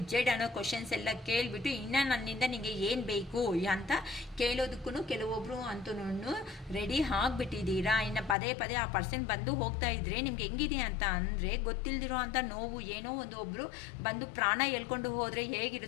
Z ಅನ್ನೋ ಕ್ವಶನ್ಸ್ ಎಲ್ಲ ಕೇಳಿಬಿಟ್ಟು ಇನ್ನು ನನ್ನಿಂದ ನಿಮಗೆ ಏನು ಬೇಕು ಅಂತ ಕೇಳೋದಕ್ಕೂ ಕೆಲವೊಬ್ಬರು ಅಂತೂ ರೆಡಿ ಆಗಿಬಿಟ್ಟಿದ್ದೀರಾ. ಇನ್ನು ಪದೇ ಪದೇ ಆ ಪರ್ಸನ್ ಬಂದು ಹೋಗ್ತಾ ಇದ್ರೆ ನಿಮ್ಗೆ ಹೆಂಗಿದೆ ಅಂತ ಅಂದರೆ ಗೊತ್ತಿಲ್ದಿರೋ ಅಂಥ ನೋವು ಏನೋ ಒಬ್ಬರು ಬಂದು ಪ್ರಾಣ ಎಳ್ಕೊಂಡು ಹೋದರೆ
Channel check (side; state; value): right; drops out; at 8.3 s